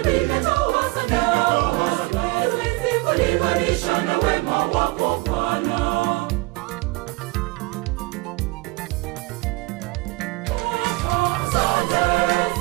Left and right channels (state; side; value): quieter; left; 22.8 dB